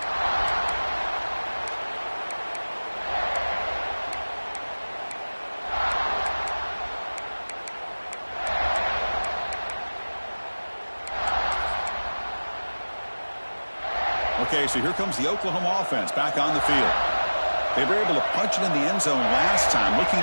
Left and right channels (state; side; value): inverted; both; correlation -1.00